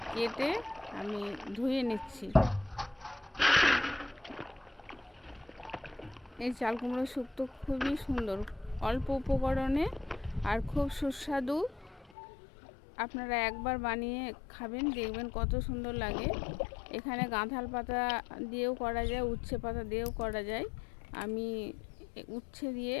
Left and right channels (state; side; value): drops out; right; at 12.1 s